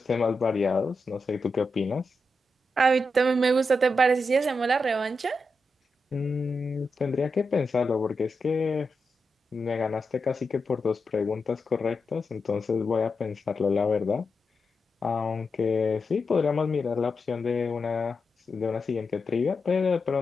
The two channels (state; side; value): normal; both; correlation 0.87